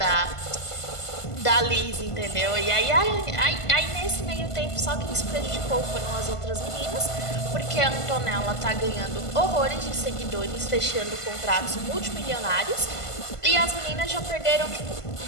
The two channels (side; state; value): right; late; 1.5 ms